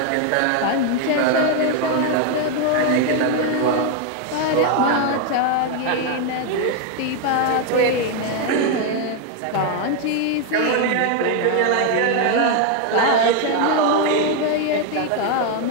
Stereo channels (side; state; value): both; different; correlation 0.01